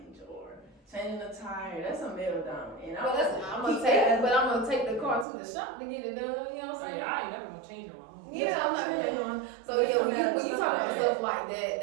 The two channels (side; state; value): left; drops out; at 5.2 s